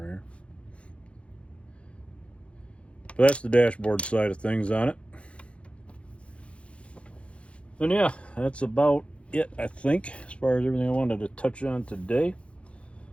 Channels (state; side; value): late; right; 0.060 ms